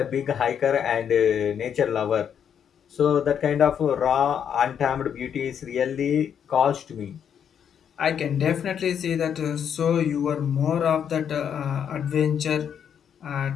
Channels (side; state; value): right; quieter; 8.3 dB